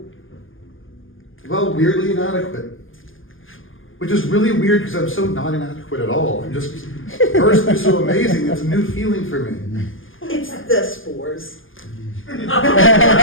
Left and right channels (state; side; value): late; right; 0.58 ms